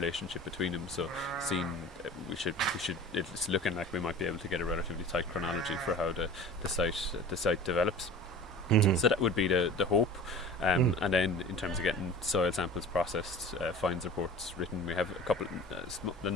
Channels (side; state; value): both; normal; correlation 0.40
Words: between them. So it's looking like we might be able to get a relatively tight chronology for how the site develops. So that would be the hope. And then in terms of getting soil samples processed, finds reports written, we have a